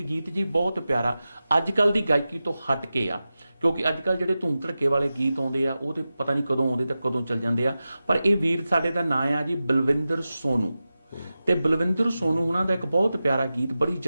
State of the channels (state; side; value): inverted; both; correlation -0.94